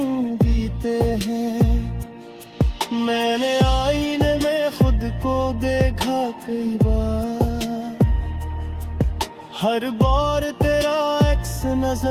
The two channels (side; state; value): both; identical; correlation 1.00